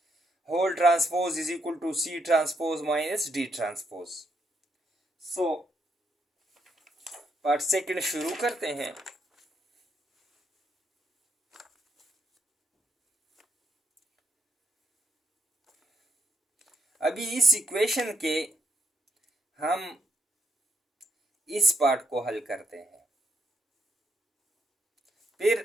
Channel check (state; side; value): normal; both; correlation 0.76